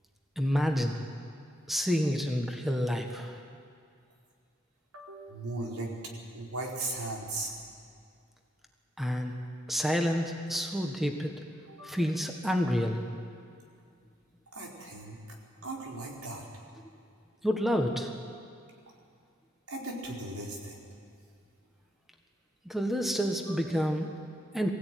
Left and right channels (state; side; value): normal; both; correlation 0.83